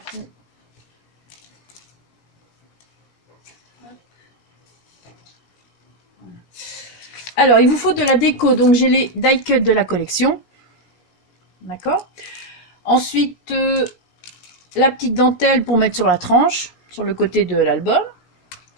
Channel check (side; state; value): right; late; 17 ms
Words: Alors, il vous faut de la déco. Donc, j'ai les die cut de la collection. D'accord. Ensuite, la petite dentelle pour mettre sur la tranche, sur le côté de l'album.